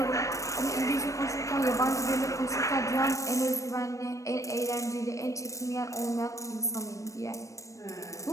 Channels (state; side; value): late; right; 0.15 ms